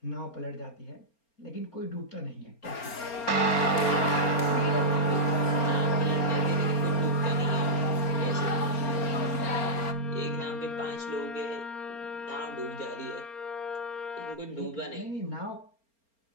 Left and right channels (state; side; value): late; right; 4.3 ms